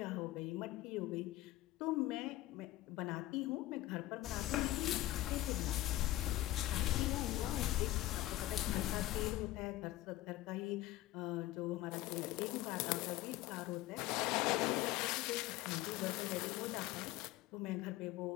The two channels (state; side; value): quieter; right; 16.3 dB